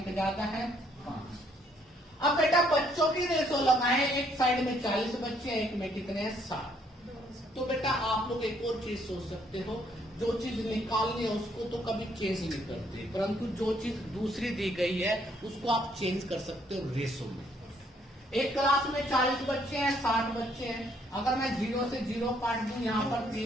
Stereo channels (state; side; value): normal; both; correlation 0.68